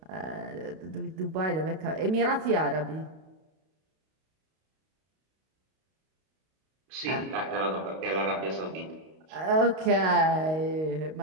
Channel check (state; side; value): late; left; 32 ms